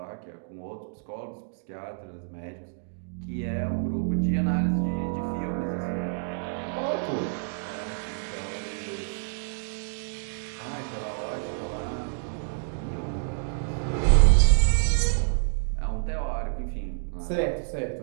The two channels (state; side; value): silent; left; digital silence